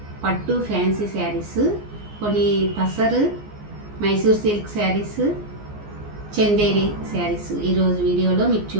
పట్టు ఫ్యాన్సీ శారీస్, కొన్ని టసర్ మైసూర్ సిల్క్ శారీస్, చందేరి శారీస్ ఈరోజు వీడియోలో మీకు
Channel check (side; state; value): left; late; 14 ms